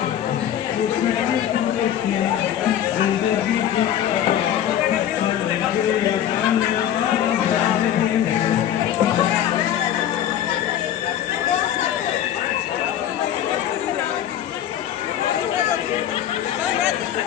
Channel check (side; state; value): right; quieter; 10.7 dB